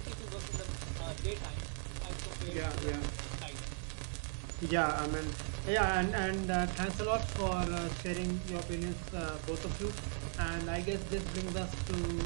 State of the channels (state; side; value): silent; left; 53 dB below the other